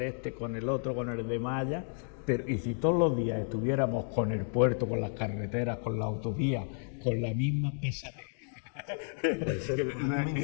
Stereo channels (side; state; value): right; silent; 56 dB below the other